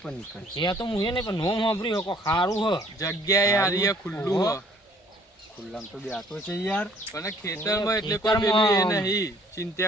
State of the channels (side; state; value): both; normal; correlation 0.59